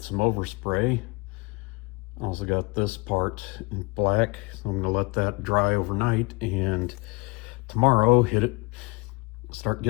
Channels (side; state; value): right; quieter; 27.0 dB